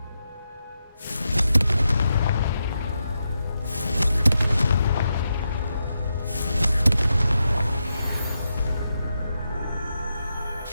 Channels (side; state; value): both; inverted; correlation -0.86